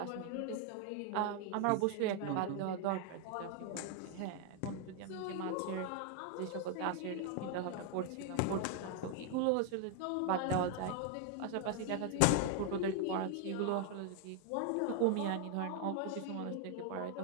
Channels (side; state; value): both; different; correlation 0.00